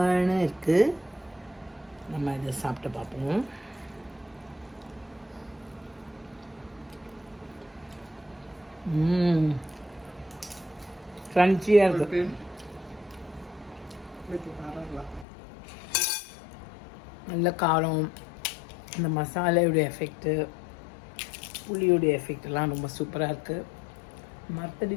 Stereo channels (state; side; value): drops out; right; at 15.2 s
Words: இருக்குது. நம்ம இதை சாப்பிட்டு பார்ப்போம். க்ரன்ச்சியாக இருக்குது. நல்ல காரம், இந்த மசாலையுடைய எஃபெக்ட்டு, புளியுடைய எஃபெக்டெல்லாம் ரொம்ப சூப்பராக இருக்குது.